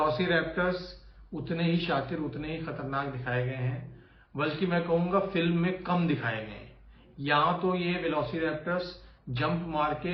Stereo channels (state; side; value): identical; both; correlation 1.00